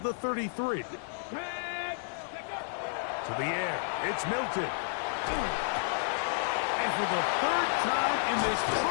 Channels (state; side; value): silent; right; digital silence